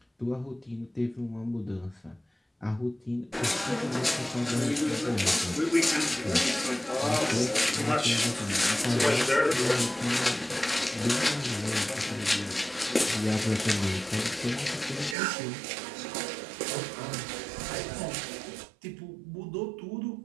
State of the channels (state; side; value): drops out; left; at 15.2 s